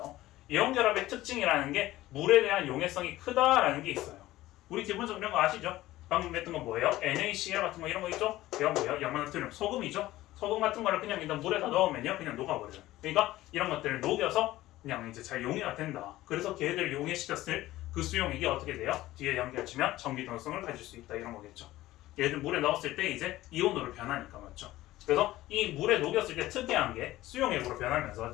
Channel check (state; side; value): quieter; right; 16.3 dB